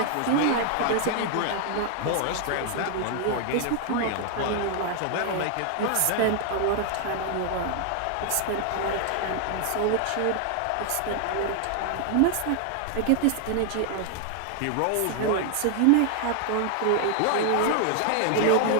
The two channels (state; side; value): different; both; correlation 0.00